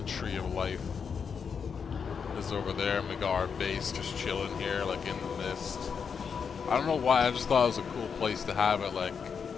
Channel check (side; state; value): right; quieter; 6.3 dB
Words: tree of life is over there, and we got our base just chilling here, like, in the mist. I don't know why, I just thought it was a cool place to have it, like,